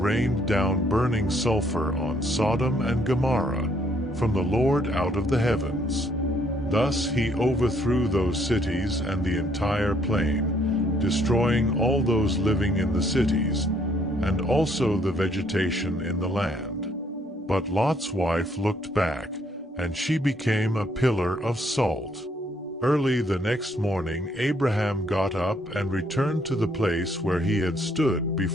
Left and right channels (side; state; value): both; normal; correlation 0.67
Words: down burning sulfur on Sodom and Gomorrah from the Lord out of the heavens. Thus he overthrew those cities and the entire plain, destroying all those living in the cities, and also the vegetation in the land. But Lot's wife looked back, and she became a pillar of salt. Early the next morning Abraham got up and returned to the place where he had stood